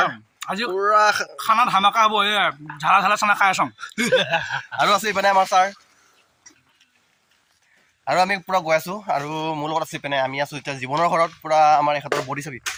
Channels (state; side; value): identical; both; correlation 1.00